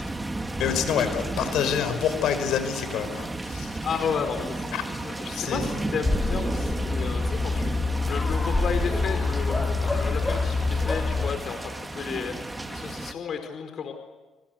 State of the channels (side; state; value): right; quieter; 3.3 dB